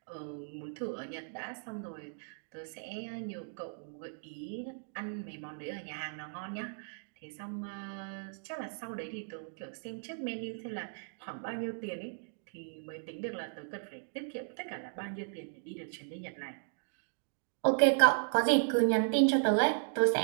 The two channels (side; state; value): left; silent; digital silence